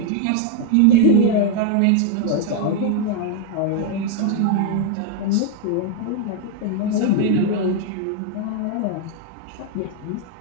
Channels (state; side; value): different; both; correlation 0.00